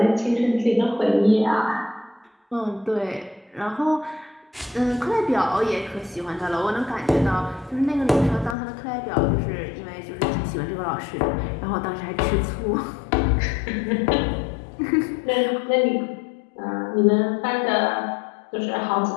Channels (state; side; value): drops out; right; at 8.6 s